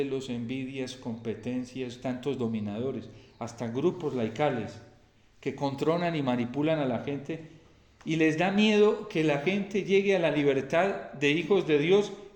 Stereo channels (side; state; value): both; identical; correlation 1.00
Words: envidias, competencias, tantos dominadores, hasta grupos laicales que controlan y manipulan a la gente y les da miedo que la gente llegue a la libertad de hijos de Dios